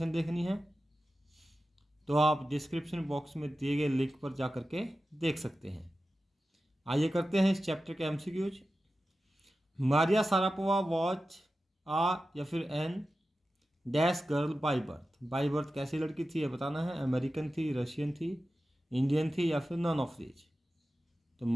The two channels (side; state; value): both; normal; correlation 0.93